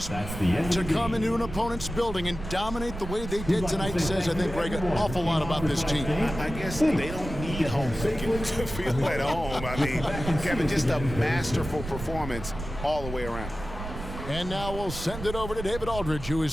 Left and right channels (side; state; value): right; noise; rumble, 9 dB below the sound